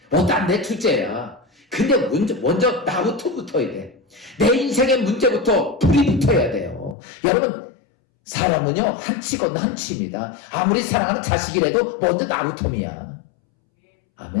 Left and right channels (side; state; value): right; drops out; at 7.0 s